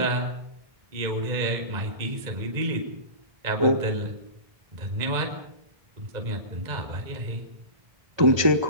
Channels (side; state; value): left; late; 1.2 ms